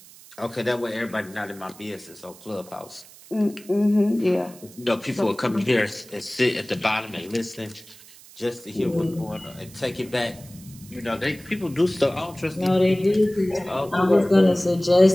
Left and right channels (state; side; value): noise; right; hiss, 21 dB below the sound